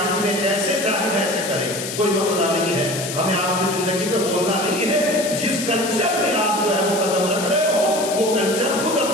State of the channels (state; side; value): noise; left; hiss, 7 dB below the sound